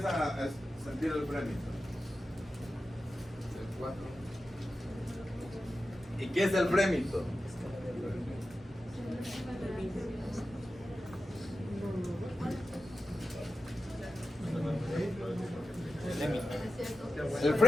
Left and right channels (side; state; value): both; normal; correlation 0.93